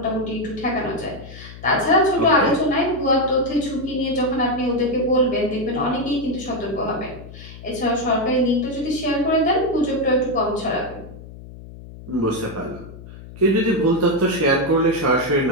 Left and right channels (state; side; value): noise; left; hum, 16 dB below the sound